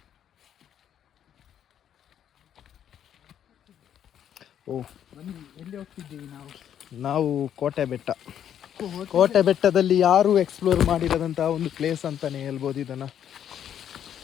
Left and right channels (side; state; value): right; quieter; 9.7 dB